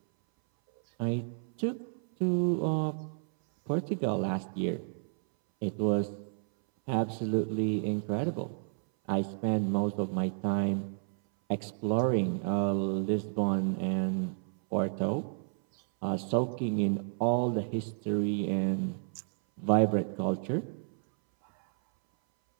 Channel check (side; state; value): left; silent; 57 dB below the other